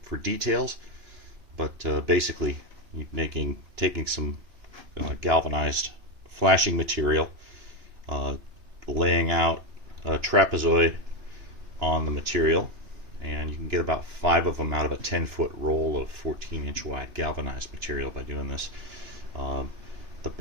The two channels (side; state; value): left; late; 2.9 ms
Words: details. But basically, taking some galvanized flashing material, laying out a trapezoid on the material, and you can get about 5 of them out of a 10-foot roll of 14-inch wide galvanized material by doing this. The